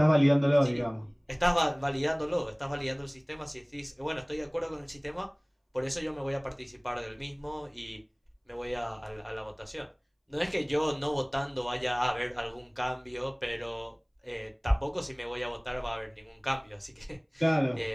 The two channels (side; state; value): both; identical; correlation 1.00